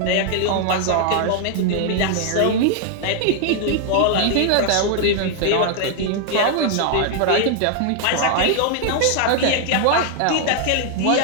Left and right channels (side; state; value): both; different; correlation 0.00